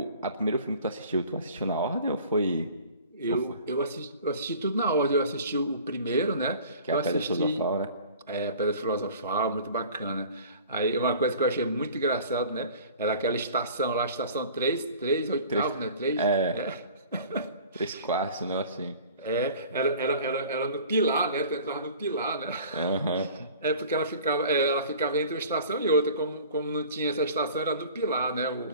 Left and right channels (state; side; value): inverted; both; correlation -0.45